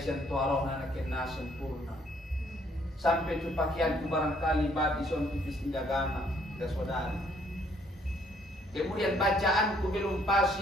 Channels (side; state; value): both; normal; correlation 0.65